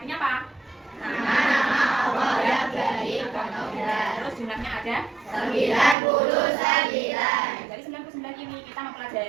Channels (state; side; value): drops out; left; at 6.0 s